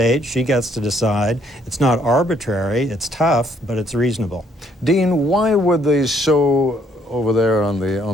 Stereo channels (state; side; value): normal; both; correlation 0.68